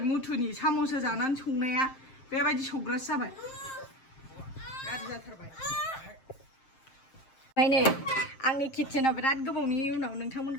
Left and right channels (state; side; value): late; right; 7.5 ms